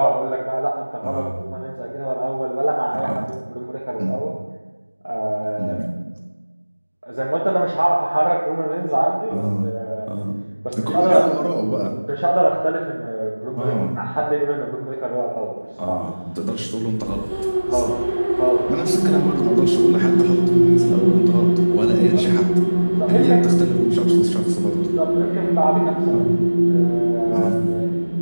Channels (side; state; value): both; inverted; correlation -1.00